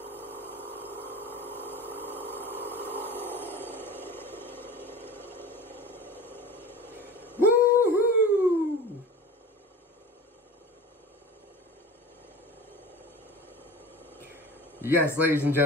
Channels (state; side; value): normal; both; correlation 0.36